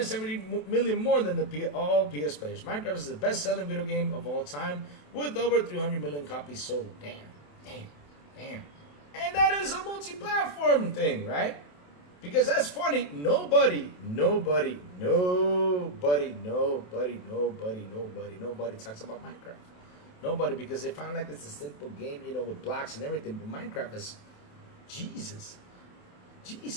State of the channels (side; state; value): right; late; 27 ms